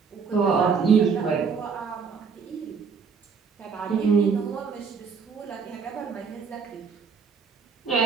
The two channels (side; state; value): left; quieter; 5.7 dB